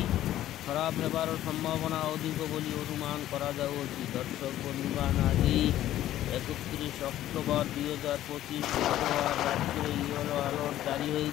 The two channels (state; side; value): quieter; right; 13.2 dB